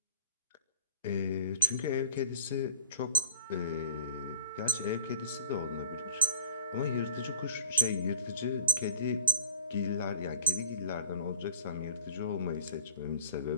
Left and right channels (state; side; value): inverted; both; correlation -0.38